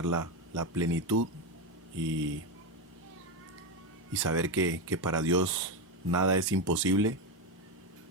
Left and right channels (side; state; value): both; normal; correlation 0.11